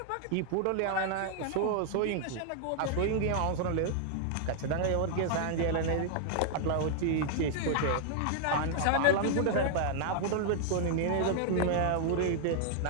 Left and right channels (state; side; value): different; both; correlation -0.01